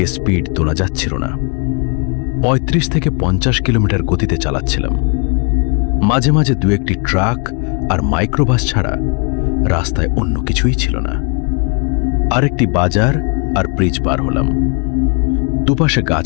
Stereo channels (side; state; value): right; quieter; 36.2 dB